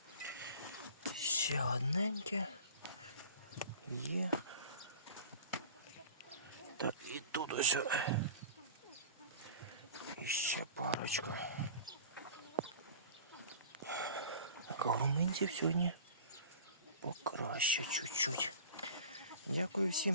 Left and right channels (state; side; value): inverted; both; correlation -0.40